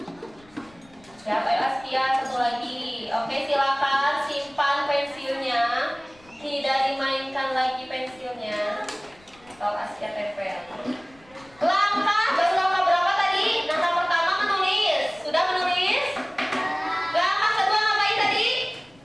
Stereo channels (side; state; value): left; noise; rumble, 28 dB below the sound